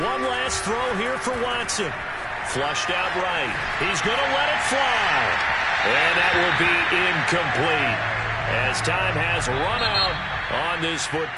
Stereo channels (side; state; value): both; identical; correlation 1.00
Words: One last throw here for Watson. Flushed out right. He's going to let it fly. And that will be incomplete as time has run out on this